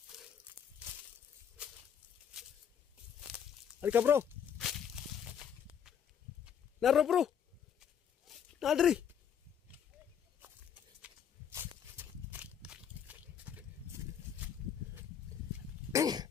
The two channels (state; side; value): quieter; right; 8.2 dB